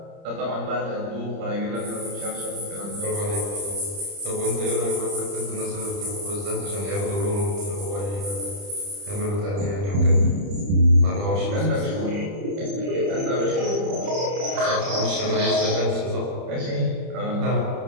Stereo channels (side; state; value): left; late; 30 ms